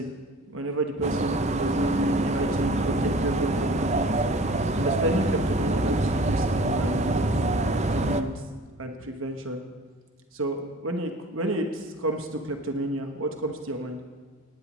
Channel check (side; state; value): both; normal; correlation 0.44